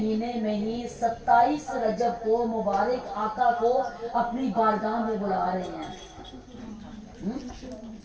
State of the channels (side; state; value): both; identical; correlation 1.00